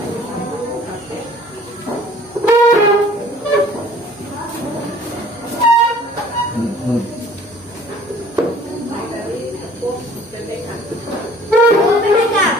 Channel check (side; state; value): both; normal; correlation 0.52